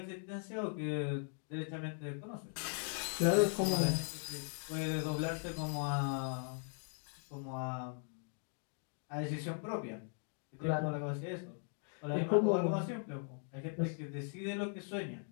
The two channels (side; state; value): right; silent; 52 dB below the other